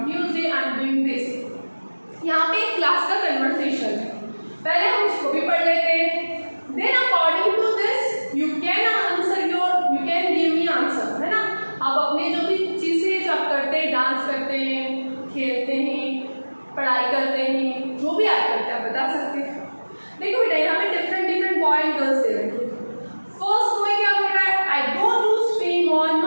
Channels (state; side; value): inverted; both; correlation -1.00